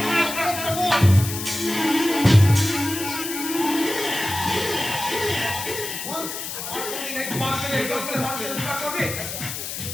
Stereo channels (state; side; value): noise; left; hiss, 6 dB below the sound